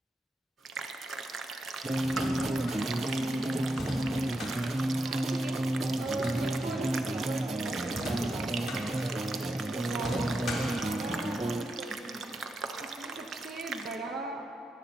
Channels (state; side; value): normal; both; correlation 0.85